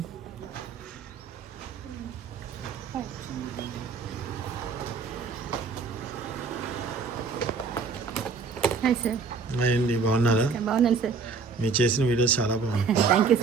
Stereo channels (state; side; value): quieter; left; 4.9 dB